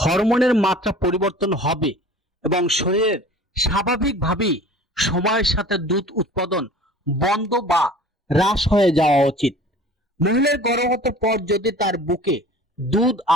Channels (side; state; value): both; normal; correlation 0.43